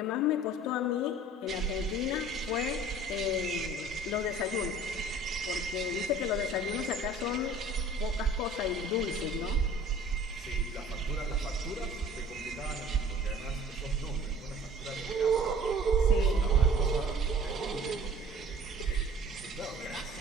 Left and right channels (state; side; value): normal; both; correlation 0.48